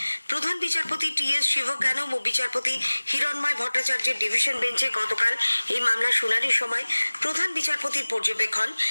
প্রধান বিচারপতি টি.এস. শিবজ্ঞানম ও বিচারপতি হিরণময় ভট্টাচার্যের ডিভিশন বেঞ্চে গতকাল এই মামলা শুনানির সময় প্রধান বিচারপতির পর্যবেক্ষণ,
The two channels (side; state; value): both; inverted; correlation -1.00